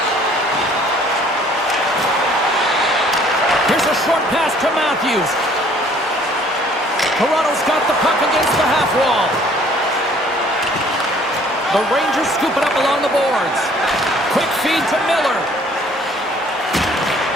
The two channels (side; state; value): both; normal; correlation 0.57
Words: Here's a short pass to Matthews. Toronto's got the puck against the half wall. The Rangers scoop it up along the boards. Quick feed to Miller.